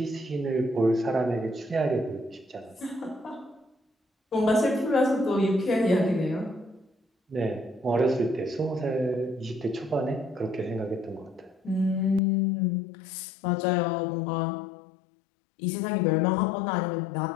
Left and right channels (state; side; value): drops out; right; at 12.2 s